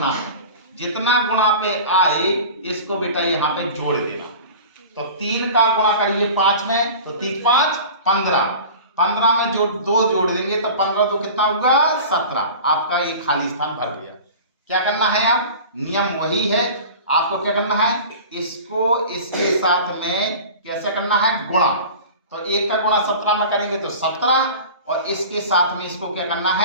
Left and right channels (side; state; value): both; inverted; correlation -0.38